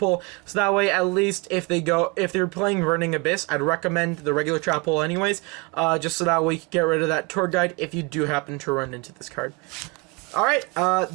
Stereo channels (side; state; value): left; quieter; 28.6 dB